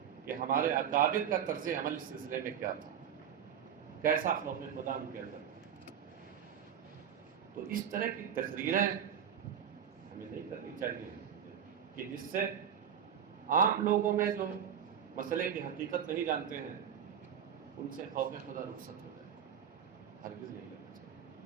کہ ہمارے اکابر کا طرز عمل اس سلسلے میں کیا تھا، کیسا خوف خدا ان کے اندر۔ تو اس طرح کی تقریریں ہمیں نہیں کرنی چاہیے کہ جس سے عام لوگوں میں جو مسئلے کی حقیقت نہیں جانتے ہیں ان سے خوف خدا رخصت ہو جائے، ہرگز نہیں کرنا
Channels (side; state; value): left; quieter; 8.6 dB